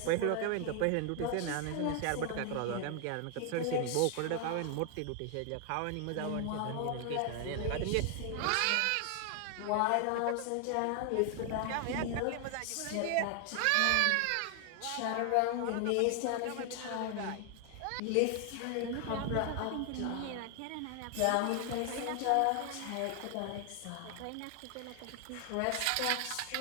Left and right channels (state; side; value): different; both; correlation 0.00